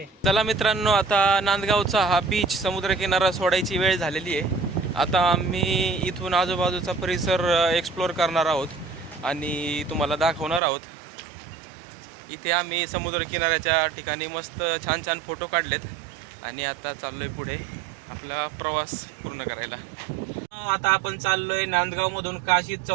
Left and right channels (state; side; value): drops out; left; at 10.6 s